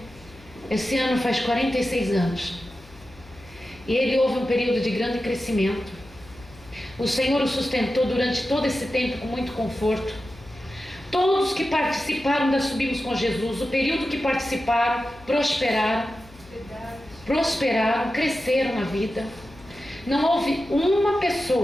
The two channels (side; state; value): left; noise; hum, 23 dB below the sound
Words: esse ano faz 46 anos. E ele houve um período de grande crescimento. O Senhor o sustentou durante todo esse tempo com muito conforto. Todos que participaram da Subimos com Jesus, o período que participaram, prosperaram, cresceram na vida. Não houve uma